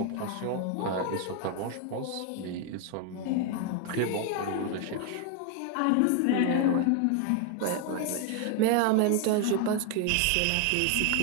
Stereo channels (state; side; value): different; both; correlation 0.01